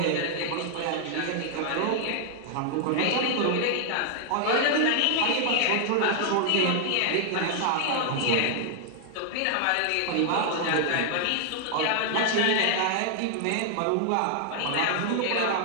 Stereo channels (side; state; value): both; different; correlation 0.00